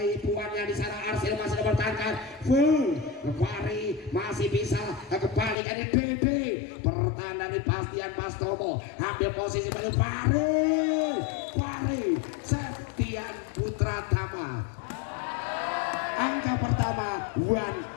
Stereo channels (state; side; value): drops out; right; at 5.6 s